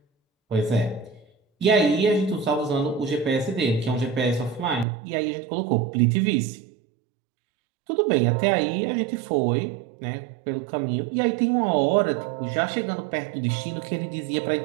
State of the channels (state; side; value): drops out; left; at 4.9 s